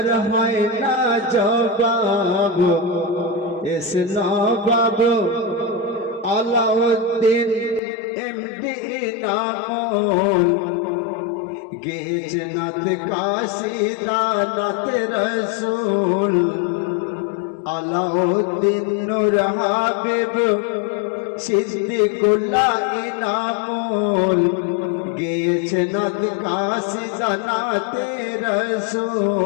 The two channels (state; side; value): drops out; right; at 7.8 s